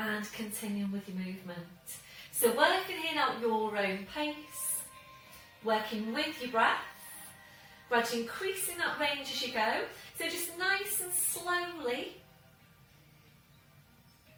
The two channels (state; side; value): identical; both; correlation 1.00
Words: continuing with your movement. So working in at your own pace, working with your breath, gradually increasing that range as you go. So just nice and slowly.